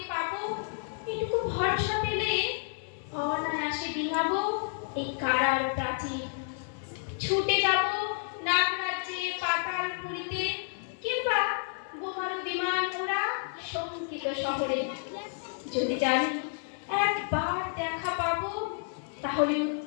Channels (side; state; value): right; silent; 58 dB below the other